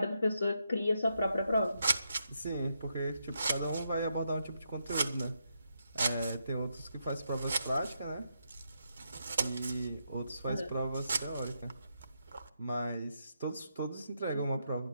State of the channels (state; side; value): inverted; both; correlation -0.81